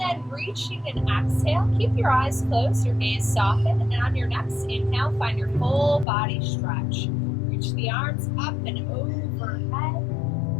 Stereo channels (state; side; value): drops out; right; at 6.1 s